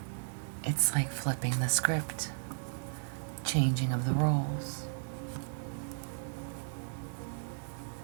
it's like flipping the script, changing of the roles.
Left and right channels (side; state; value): left; silent; digital silence